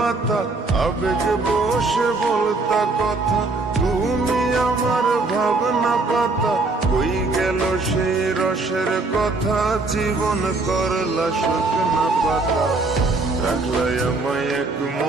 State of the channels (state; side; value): quieter; left; 3.5 dB